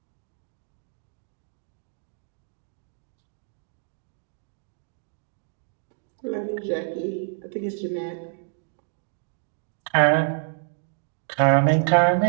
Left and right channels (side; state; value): left; silent; digital silence